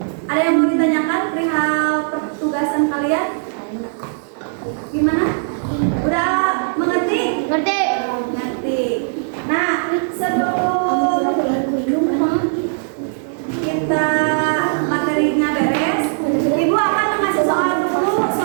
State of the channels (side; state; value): left; silent; digital silence